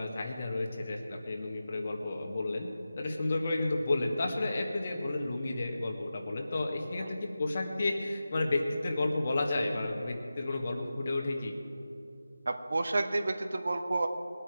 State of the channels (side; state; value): both; inverted; correlation -0.93